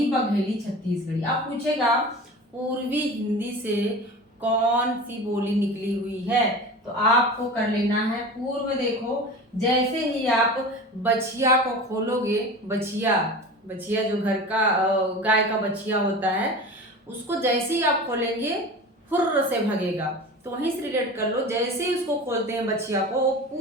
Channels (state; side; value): normal; both; correlation 0.34